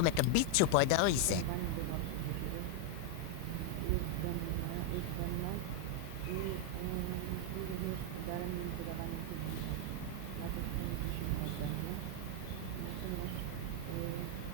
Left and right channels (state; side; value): different; both; correlation 0.00